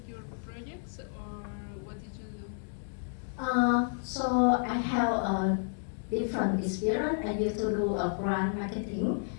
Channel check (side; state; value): right; silent; digital silence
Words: your projects, or what did you do? So I have a different experience. I used to do a brand marketing.